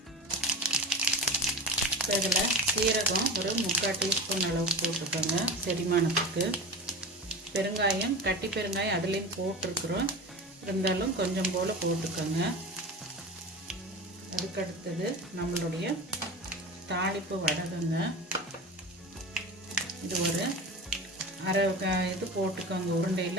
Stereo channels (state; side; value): normal; both; correlation 0.30